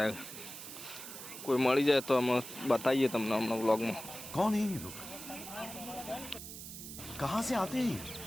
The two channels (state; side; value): noise; right; hiss, 11 dB below the sound